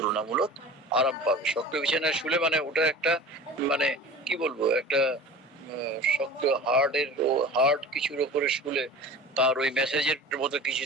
আরাম পাবে। শক্ত বিছানায় শুলে মানে ওটা একটা মানে কি বলবো, একটা শক্ত হার্ডের ও হার্ড কিছুর উপরে শুলে তার ওই মেসেজের মতো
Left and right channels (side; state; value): both; normal; correlation 0.37